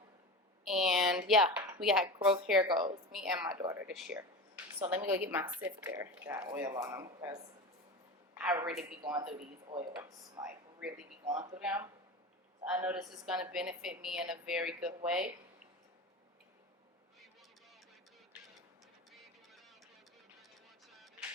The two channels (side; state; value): both; normal; correlation 0.28